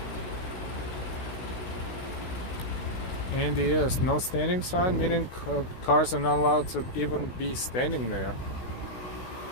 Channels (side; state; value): right; late; 16 ms